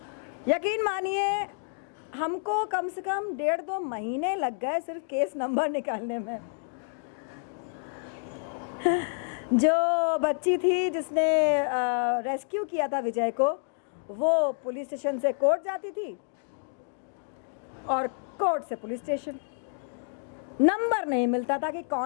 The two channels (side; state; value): right; silent; 59 dB below the other